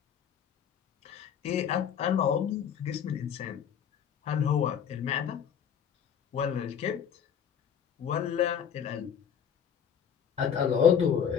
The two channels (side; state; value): right; quieter; 8.2 dB